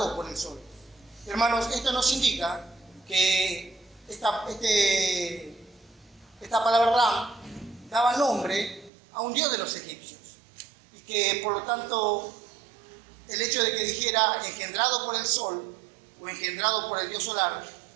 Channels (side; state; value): left; drops out; at 8.9 s